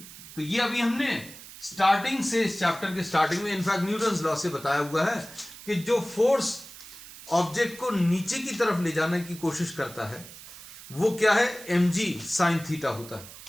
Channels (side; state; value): right; noise; hiss, 16 dB below the sound